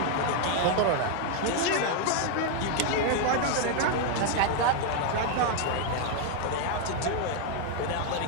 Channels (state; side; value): different; both; correlation 0.01